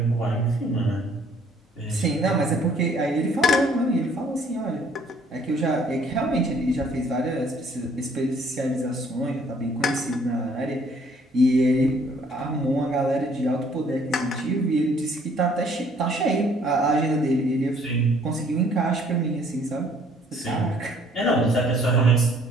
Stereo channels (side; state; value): both; normal; correlation 0.61